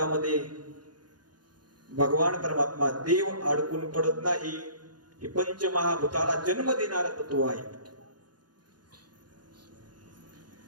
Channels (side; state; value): left; late; 0.70 ms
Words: भगवान परमात्मा देव अडकून पडत नाही. हे पंचमहाभूताला जन्म देणारा तत्व आहे.